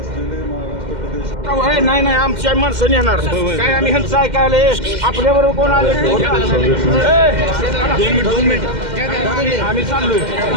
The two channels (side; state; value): left; late; 2.1 ms